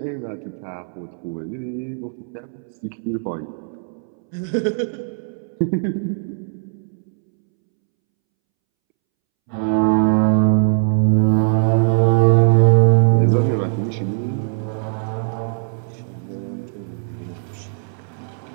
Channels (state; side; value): silent; left; 66 dB below the other